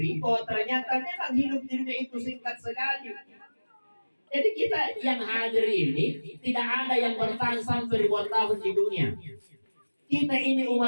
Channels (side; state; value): both; inverted; correlation -1.00